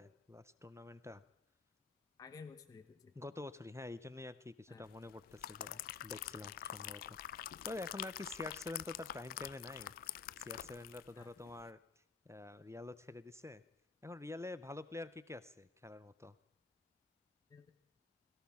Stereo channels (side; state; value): right; quieter; 4.8 dB